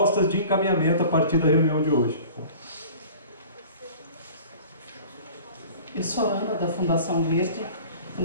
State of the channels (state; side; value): inverted; both; correlation -0.43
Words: de encaminhamento a partir da reunião de hoje. Eu sou a Ana, da Fundação Verde. A